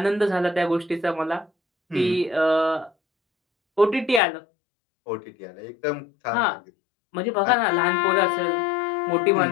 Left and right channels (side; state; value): right; drops out; at 4.2 s